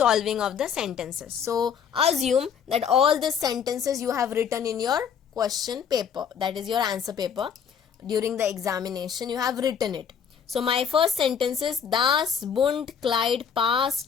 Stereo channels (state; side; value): quieter; right; 7.5 dB